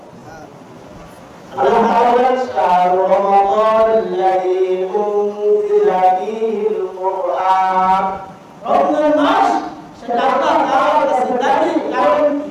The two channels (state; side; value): identical; both; correlation 1.00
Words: আল্লাহ তাআলা বলেন শাহরু রমাদানাল্লাযী উনজিলা ফীহিল কুরআন। রমজান মাস সেটা আল্লাহ তাআলার কাছে দাবি, কারণ